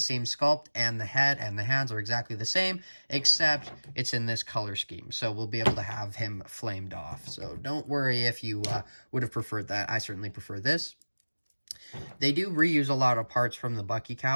sculpt, and the head and the hands are exactly the same, except it's in this color scheme. So we'll be able to have him flamed off. So don't worry if you would have preferred that. I certainly prefer this. They do reuse a lot of parts from the Bucky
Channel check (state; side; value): inverted; both; correlation -1.00